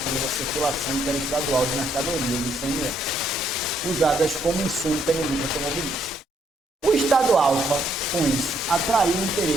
à circulação interestadual de mercadorias do ICMS, usadas como insumo pela indústria automobilística. O Estado Alfa, com isso, atraiu o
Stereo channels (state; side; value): normal; both; correlation 0.71